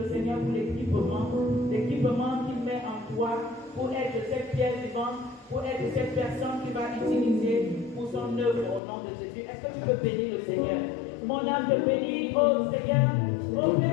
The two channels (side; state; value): right; drops out; at 8.8 s